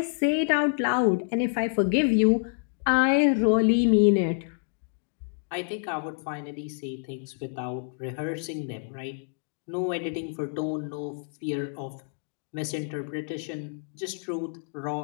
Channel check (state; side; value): silent; right; digital silence